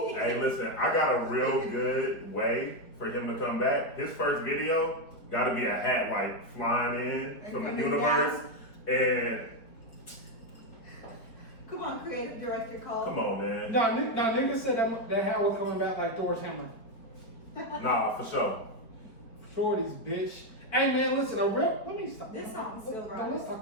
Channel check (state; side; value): late; right; 4.5 ms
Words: listen, I got a real good way for him to come back. His first video got to be a hat like flying in And from the coming universe. And Come on, creative director Cole. come on, man. Nah, niggas said that hat was coming back like Thor's hammer. Nah, for sure. Shorties, bitch. Hey man, listen, let me stop. This song's still Let's right.